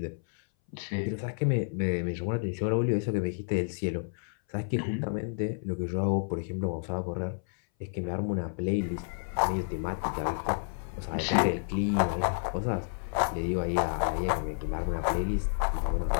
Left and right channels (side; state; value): right; silent; 58 dB below the other